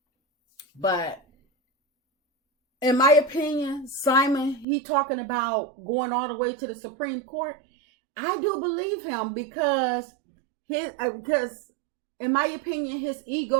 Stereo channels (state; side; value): drops out; left; at 4.7 s